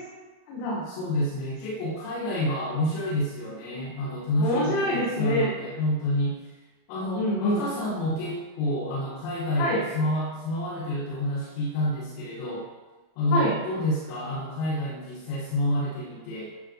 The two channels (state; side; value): late; right; 38 ms